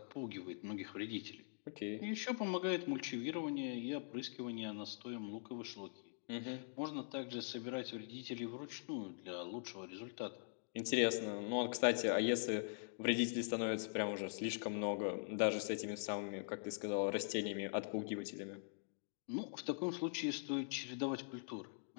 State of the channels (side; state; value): right; silent; digital silence